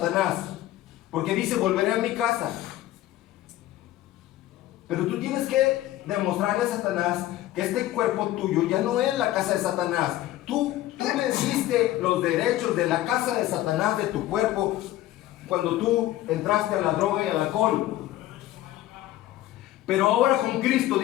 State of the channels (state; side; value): quieter; right; 14.8 dB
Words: porque dice, volveré a mi casa. Pero tú tienes que demostrarle a Satanás que este cuerpo tuyo ya no es la casa de Satanás. Tú le diste los derechos de la casa de Satanás, de tu cuerpo, cuando tú entraste a la droga y al alcohol. Pero ahora con Cristo,